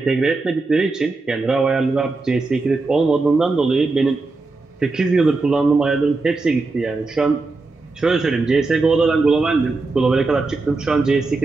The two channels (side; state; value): left; quieter; 3.6 dB